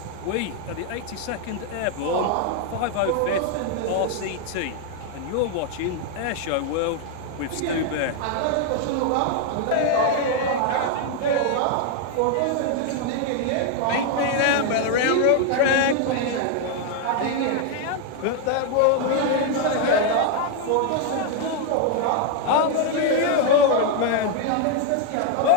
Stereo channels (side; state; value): both; different; correlation 0.00